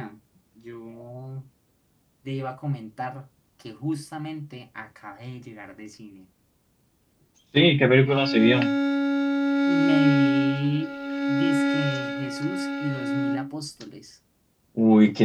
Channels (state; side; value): identical; both; correlation 1.00